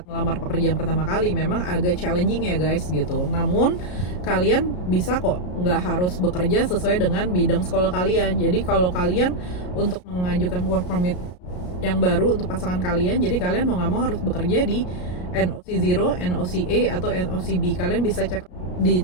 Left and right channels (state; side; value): late; right; 33 ms